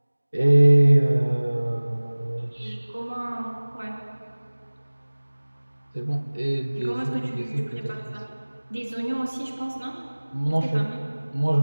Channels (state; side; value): inverted; both; correlation -1.00